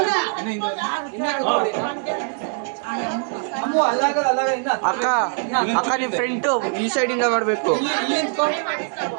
ಅಕ್ಕ ಅಕ್ಕ ನಿಮ್ಮ ಫ್ರೆಂಟು ಈ ಸೈಡಿಂದ ಮಾಡಬೇಕು.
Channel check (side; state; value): left; silent; 56 dB below the other